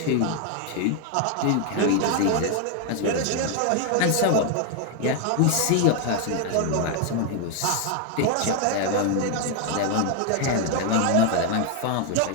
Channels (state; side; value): different; both; correlation 0.00